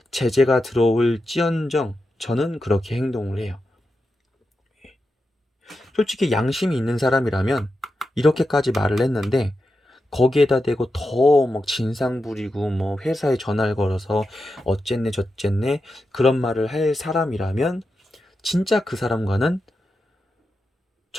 제재가 들어올지언정 저는 그렇게 행동을 해요. 솔직히 양심이 있는 사람이라면 이렇게까지 말을 했는데 거기에다 대고 더 막 진상 부리고 회사에 전화를 걸어서 어쨌네 저쨌네 그런 말을 할 사람이라면 진짜 그 사람과는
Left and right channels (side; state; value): both; normal; correlation 0.89